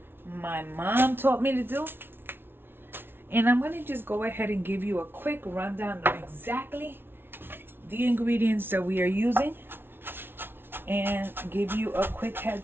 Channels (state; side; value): late; left; 0.11 ms